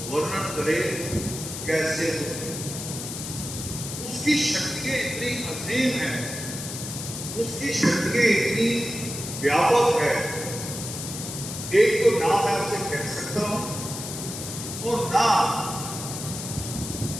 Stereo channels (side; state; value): left; noise; hiss, 7 dB below the sound